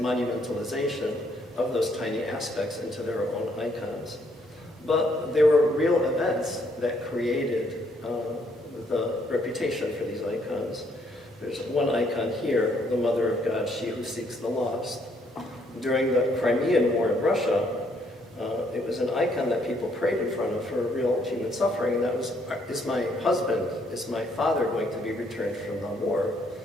of those tiny aspects into their own icons. But there were real events that created the reputation for these icons. There's one icon here, the Mother of God, She Who Seeks the Lost. During the Crimean War in Russia, it was an icon that people prayed in front of for real human suffering, and that was, is my husband, is my father going to be returned from the war?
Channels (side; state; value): both; normal; correlation 0.69